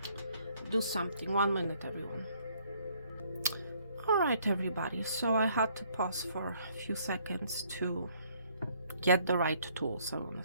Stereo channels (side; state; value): both; inverted; correlation -0.65